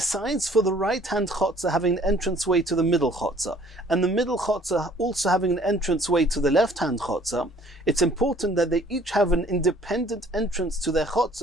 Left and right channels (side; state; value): both; normal; correlation 0.56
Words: for the right-hand chotzer having an entranceway to the middle chotzer, and the middle chotzer also having an entranceway to the left-hand chotzer, it's important that they each have an independent entrance to their